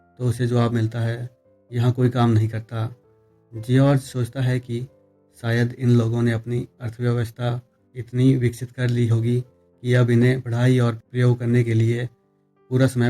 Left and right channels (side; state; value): both; identical; correlation 1.00